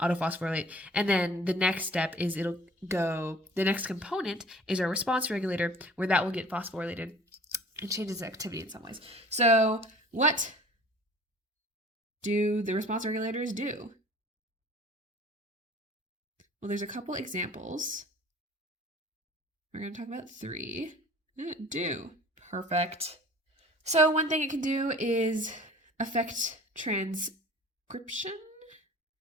and then the next step is the next component is our response regulator, where that will get phosphorylated and changes activity in some ways. So what do the response regulators do? Well, there's a couple examples. We're going to talk about three. Do. Perfect. So one thing it can do is affect transcription.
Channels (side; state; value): both; normal; correlation 0.47